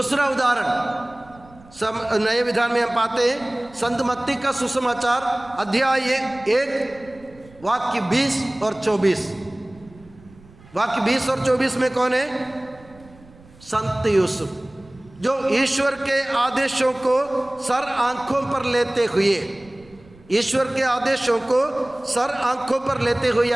उदाहरण नए विधान में हम पाते हैं संत मत्ती का सुसमाचार अध्याय 1 वाक्य 20 और 24। वाक्य 20 और 24 में कौन है? संत यूसुफ, जो ईश्वर के आदेशों को सर आंखों पर लेते हुए, ईश्वर के आदेशों को सर आंखों पर लेते हुए,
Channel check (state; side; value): noise; right; rumble, 24 dB below the sound